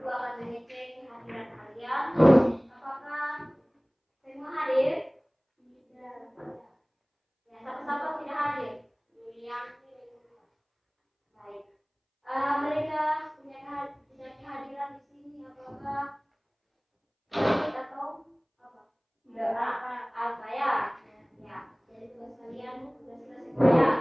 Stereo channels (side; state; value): both; identical; correlation 1.00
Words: akan mengecek kehadiran kalian. Apakah semua hadir? Tidak. Ya, satu-satu tidak hadir. Baik. Mereka punya kehadiran di sini. Apakah atau apa? Tidak. Apa ya? Ya. Jadi tugas kalian sudah selesai